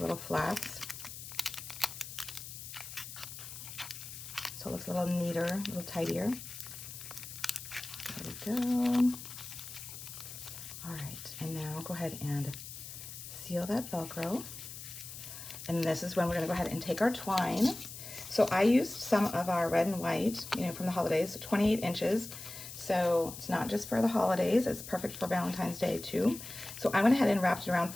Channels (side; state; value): left; noise; hiss, 11 dB below the sound